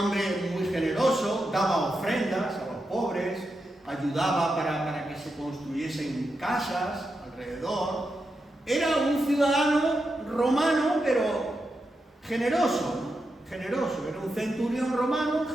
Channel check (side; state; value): both; normal; correlation 0.87